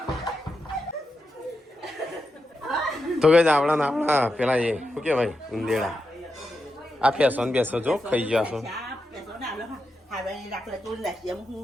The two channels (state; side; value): normal; both; correlation 0.87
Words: તો કઈ આપણા પેલા એ શું કેવાય ઉંદેડા આ પેસો ને બેસો જો ખાઈ ગયા છો